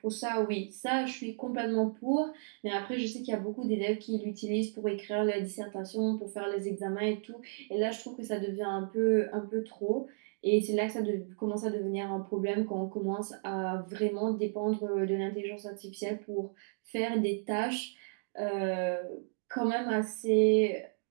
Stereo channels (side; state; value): left; silent; digital silence